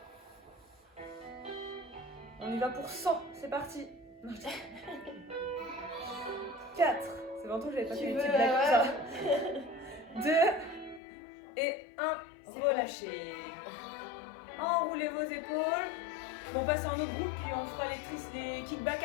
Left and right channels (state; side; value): drops out; right; at 11.0 s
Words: On y va pour 100. C'est parti. 4. C'est longtemps que j'avais pas fait des petites blagues comme ça. 2 et 1. Relâchez. Enroulez vos épaules. On passe à un autre groupe puis on fera les kickbacks